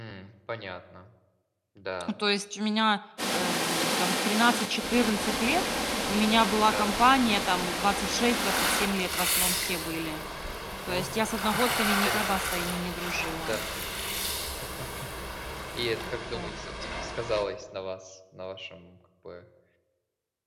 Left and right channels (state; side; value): identical; both; correlation 1.00